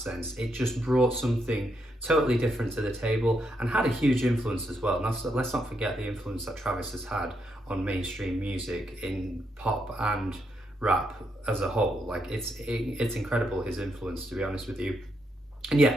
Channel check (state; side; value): normal; both; correlation 0.79